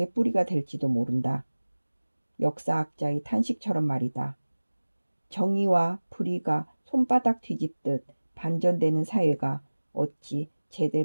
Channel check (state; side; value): inverted; both; correlation -1.00